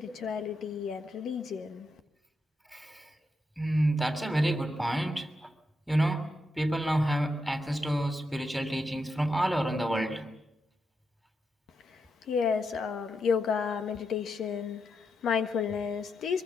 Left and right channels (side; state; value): both; normal; correlation 0.84